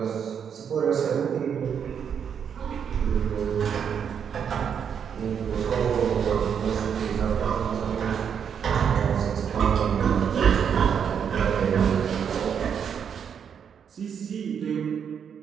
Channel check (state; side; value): quieter; left; 7.6 dB